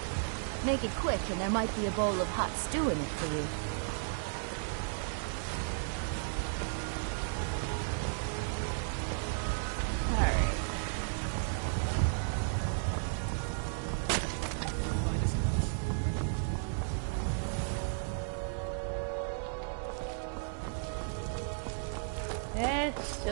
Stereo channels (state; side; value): silent; left; digital silence